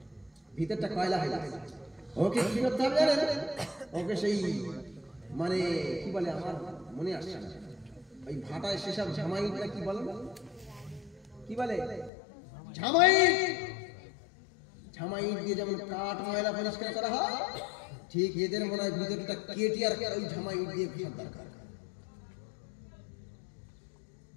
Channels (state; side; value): drops out; right; at 12.1 s